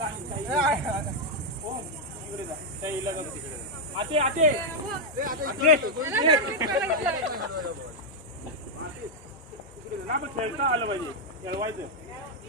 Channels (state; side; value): normal; both; correlation -0.02